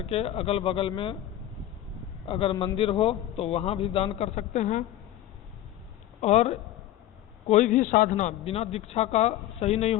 के अगल बगल में अगर मंदिर हो तो वहाँ भी दान कर सकते हैं। और कोई भी साधना बिना दीक्षा का सही नहीं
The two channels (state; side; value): quieter; right; 13.0 dB